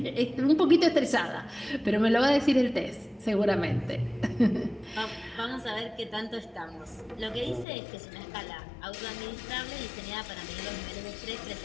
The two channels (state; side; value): drops out; right; at 7.7 s